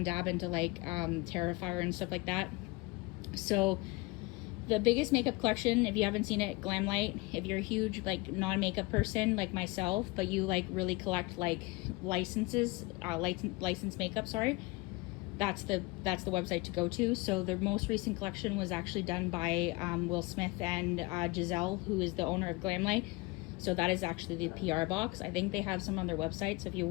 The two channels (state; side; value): quieter; right; 24.1 dB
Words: dab into like Terrifier and stuff like that. So the biggest makeup collection, if you haven't seen it, Glamlight. If you're a huge like non-makeup person like myself, but you like really collect like licenses, licensed makeup, sorry, that's the website to go to. So the most recent collection was actually done by Will Smith and Giselle, who is the owner of Glamlight. So that is actually the PR box. I think they have some on their website, so if you